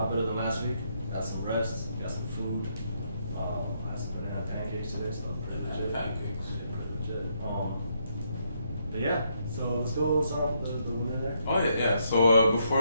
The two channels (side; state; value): both; inverted; correlation -0.76